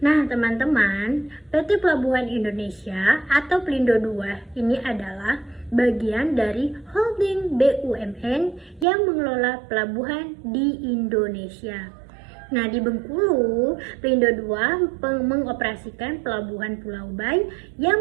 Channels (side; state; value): left; drops out; at 8.8 s